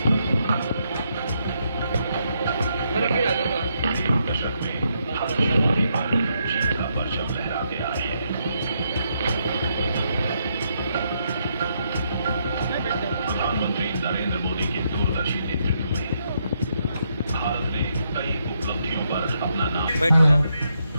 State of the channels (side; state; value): both; inverted; correlation -0.78